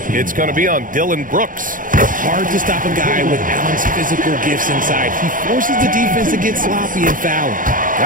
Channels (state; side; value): late; left; 0.39 ms